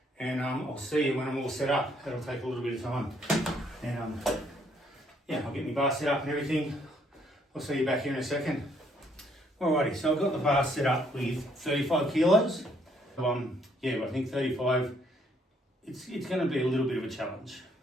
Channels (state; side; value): normal; both; correlation 0.68